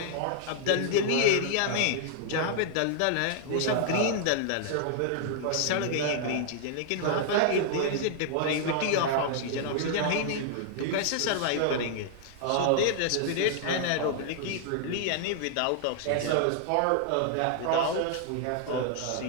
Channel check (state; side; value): different; both; correlation 0.00